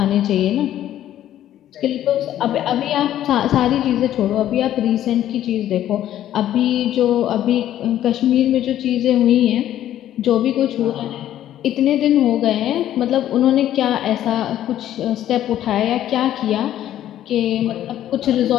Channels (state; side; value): quieter; right; 12.0 dB